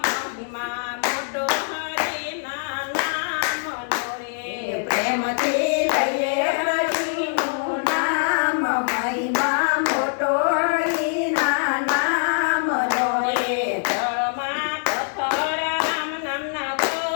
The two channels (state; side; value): silent; right; 61 dB below the other